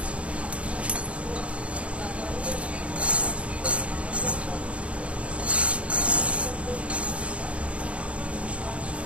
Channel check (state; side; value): late; left; 0.062 ms